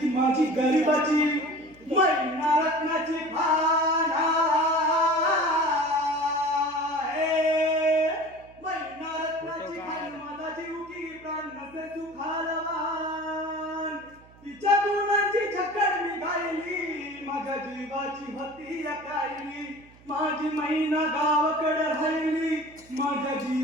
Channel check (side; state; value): right; noise; hum, 25 dB below the sound